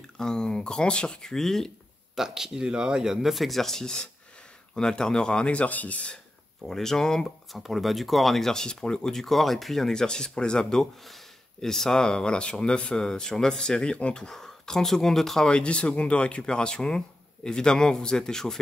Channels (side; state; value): both; normal; correlation 0.90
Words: un grand circuit. Tac, il est là, il y a 9 exercices. On alternera un exercice pour les jambes, enfin pour le bas du corps, un exercice pour le haut du corps et puis un exercice pour les abdos. Et ça, voilà, sur 9 séries en tout. 30 secondes de travail, 10 secondes de récupération. Évidemment, vous êtes